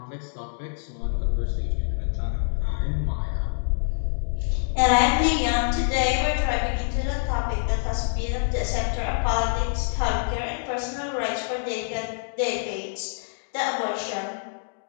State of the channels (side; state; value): right; silent; digital silence